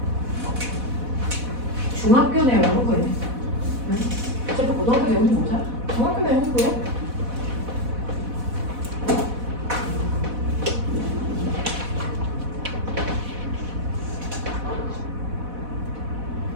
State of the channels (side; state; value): left; late; 4.1 ms